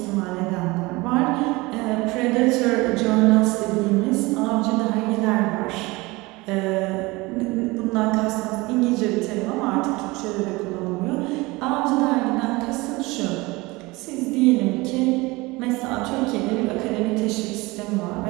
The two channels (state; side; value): quieter; left; 22.7 dB